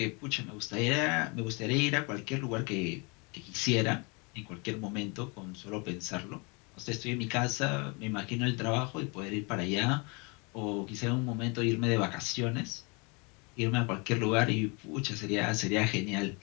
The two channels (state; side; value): quieter; right; 30.8 dB